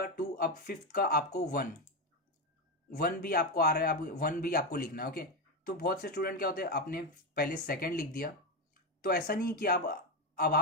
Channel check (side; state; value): both; normal; correlation 0.12